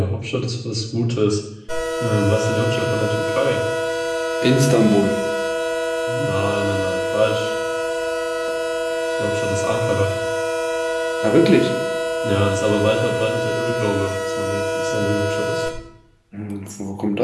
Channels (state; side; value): identical; both; correlation 1.00